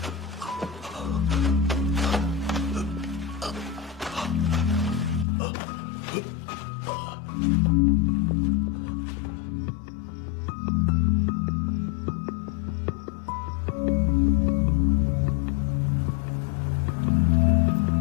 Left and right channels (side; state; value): right; drops out; at 5.2 s